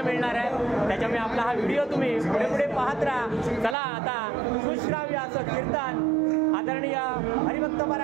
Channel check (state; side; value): drops out; left; at 3.8 s